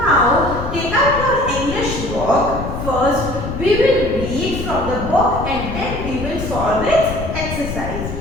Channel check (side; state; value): left; noise; rumble, 6 dB below the sound